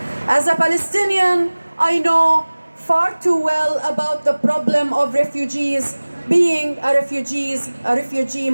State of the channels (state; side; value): inverted; both; correlation -1.00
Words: As a Palestinian, I know far too well about the problem of refugees, being a refugee